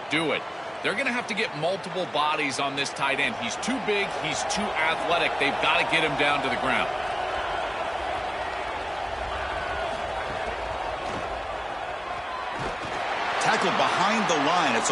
do it. They're going to have to get multiple bodies on this tight end. He's too big. He's too athletic. They've got to get him down to the ground. Tackled behind the line. It's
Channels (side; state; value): both; identical; correlation 1.00